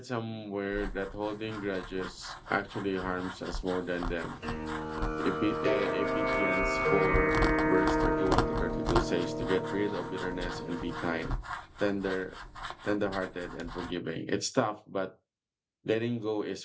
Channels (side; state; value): both; identical; correlation 1.00